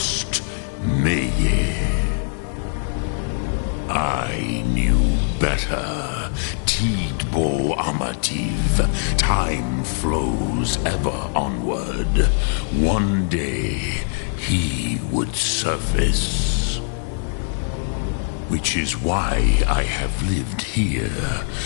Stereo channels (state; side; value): silent; right; digital silence